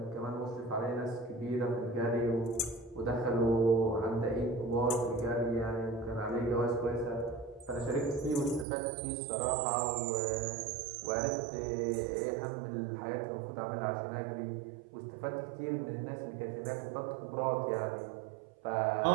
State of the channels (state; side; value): drops out; left; at 8.7 s